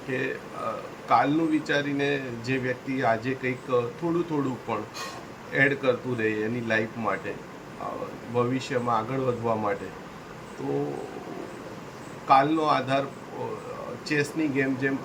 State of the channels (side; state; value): both; identical; correlation 1.00